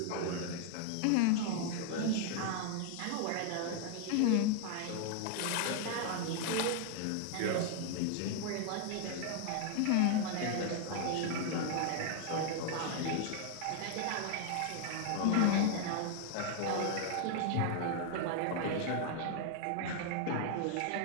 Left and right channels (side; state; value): both; different; correlation 0.00